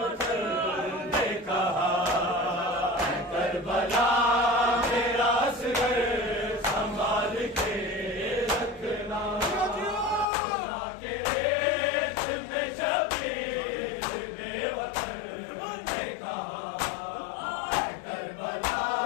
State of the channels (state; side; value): drops out; right; at 10.2 s